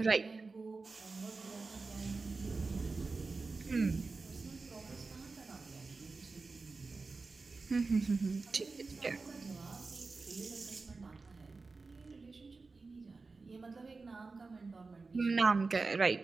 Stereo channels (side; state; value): left; quieter; 4.0 dB